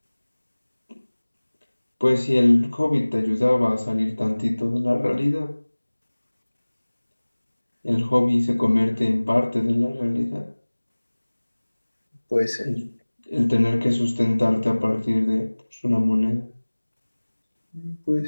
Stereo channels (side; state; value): both; inverted; correlation -1.00